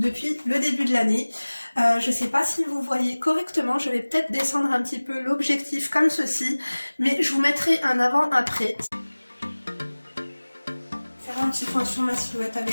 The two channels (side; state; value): both; inverted; correlation -1.00